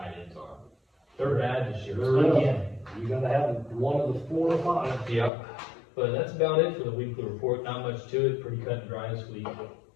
ends are. They're bad this year, Sure is. again. You gotta have one of the 4 or 5. Yep. But that's about it for the weekly report. Not much to it, pretty cut and dry this week.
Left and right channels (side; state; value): right; drops out; at 5.3 s